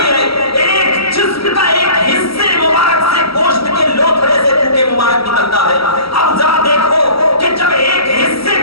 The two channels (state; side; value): late; right; 0.75 ms